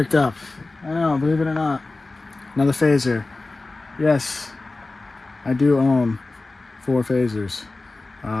up. I know, believe it or not. Another phaser. Yes, I do own 4 phasers.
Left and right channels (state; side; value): quieter; right; 3.3 dB